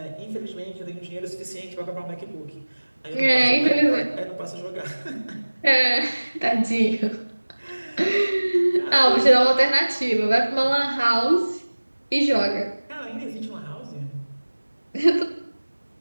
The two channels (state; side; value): inverted; both; correlation -1.00